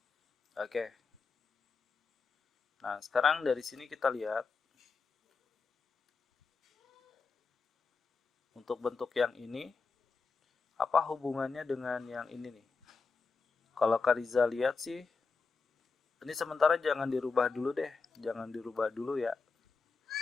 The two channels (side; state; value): right; quieter; 4.4 dB